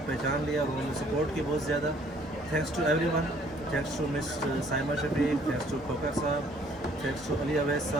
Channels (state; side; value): normal; both; correlation 0.60